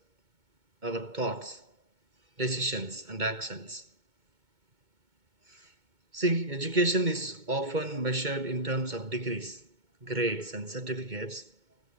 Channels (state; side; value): late; left; 2.2 ms